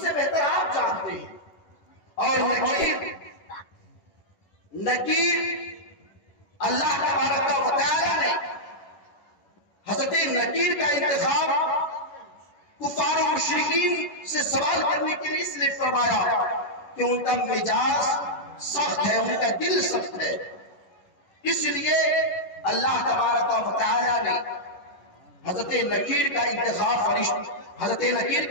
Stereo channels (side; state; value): right; late; 10 ms